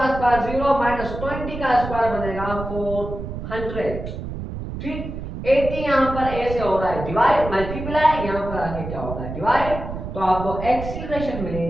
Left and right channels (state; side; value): noise; right; rumble, 7 dB below the sound